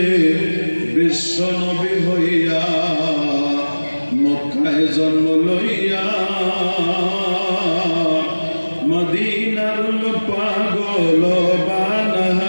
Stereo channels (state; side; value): inverted; both; correlation -1.00